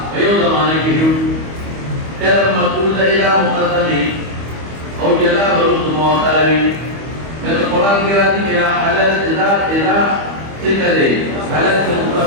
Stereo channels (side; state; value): left; late; 25 ms